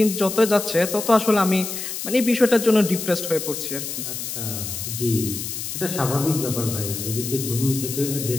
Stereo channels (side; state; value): left; noise; hiss, 6 dB below the sound